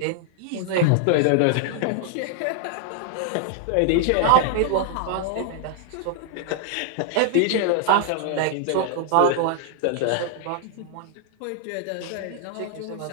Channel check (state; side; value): different; both; correlation -0.01